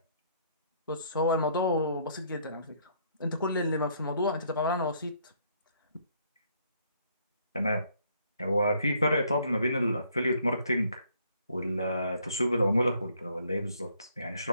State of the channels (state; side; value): inverted; both; correlation -0.66